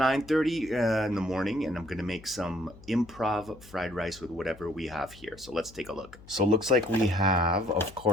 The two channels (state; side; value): noise; left; hum, 21 dB below the sound